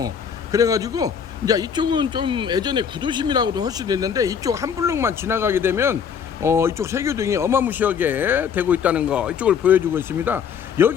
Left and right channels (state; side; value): quieter; right; 7.3 dB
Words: 그래가지고 이제 이쪽은 좀 예전에 구도심이라고도 할 수도 있는데, 이쪽 한 블록만 지나가게 되면 이쪽 세교동이 어마무시하게 되고 있다는 거, 이쪽을 보여주고 있습니다.